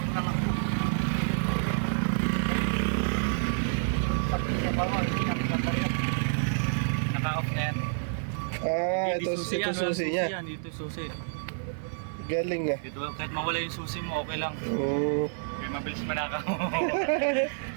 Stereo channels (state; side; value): silent; left; 59 dB below the other